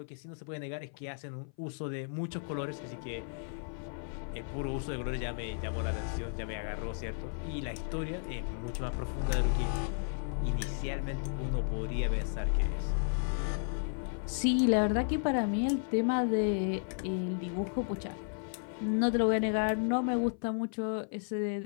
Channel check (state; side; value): silent; right; 55 dB below the other